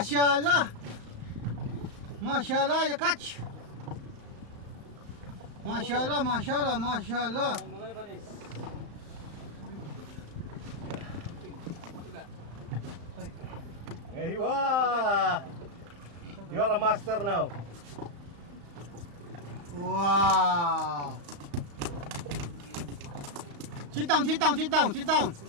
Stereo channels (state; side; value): late; left; 35 ms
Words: Mashallah, you catch. Mashallah, mashallah, mashallah. Hey, wow! You are a master now. Wow. Sit down, sit down, sit down, sit down.